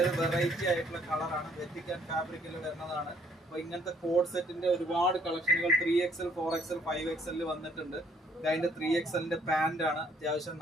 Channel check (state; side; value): normal; both; correlation 0.64